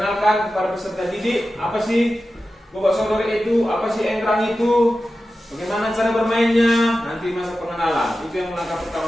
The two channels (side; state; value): both; normal; correlation 0.93